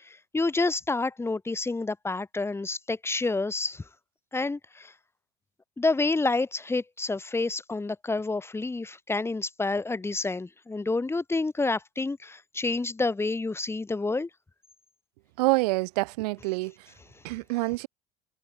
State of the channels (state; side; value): normal; both; correlation 0.56